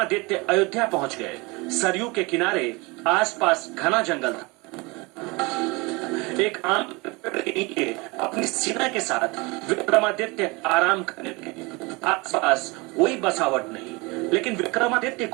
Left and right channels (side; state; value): left; quieter; 25.9 dB